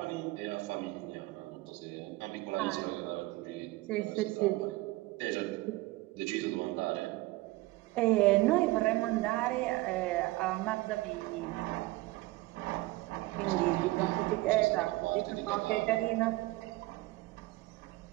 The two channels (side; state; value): left; quieter; 20.0 dB